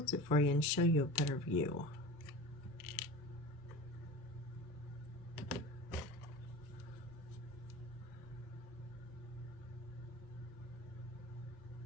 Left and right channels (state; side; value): normal; both; correlation 0.34